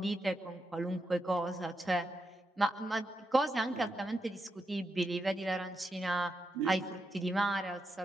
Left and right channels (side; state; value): both; normal; correlation 0.85